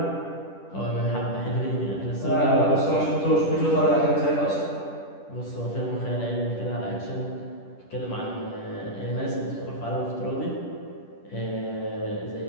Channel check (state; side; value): late; right; 10 ms